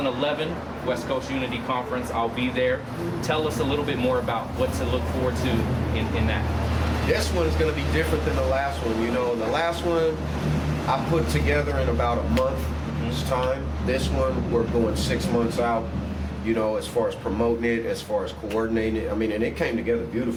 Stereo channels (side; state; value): both; identical; correlation 1.00